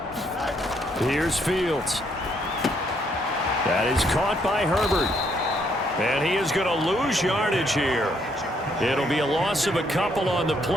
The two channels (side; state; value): both; normal; correlation 0.71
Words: Here's Fields. That is caught by Herbert. And he is going to lose yardage here. It'll be a loss of a couple on the